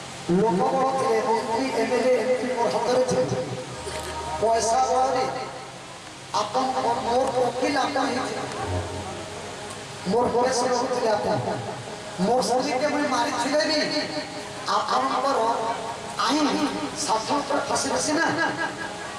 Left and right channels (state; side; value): identical; both; correlation 1.00